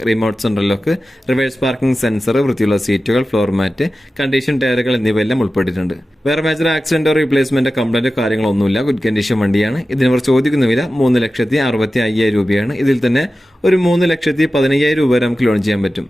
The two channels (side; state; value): both; normal; correlation 0.94